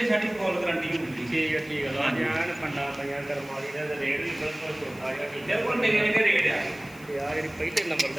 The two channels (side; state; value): left; noise; hiss, 23 dB below the sound